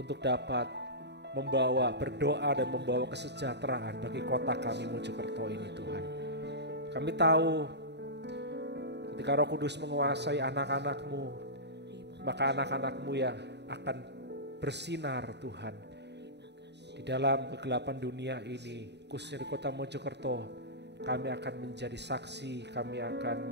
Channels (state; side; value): late; left; 0.50 ms